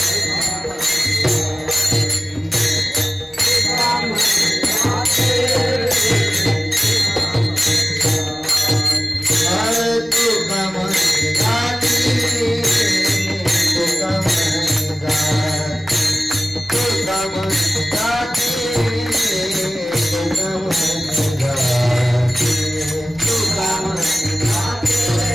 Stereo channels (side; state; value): both; normal; correlation 0.97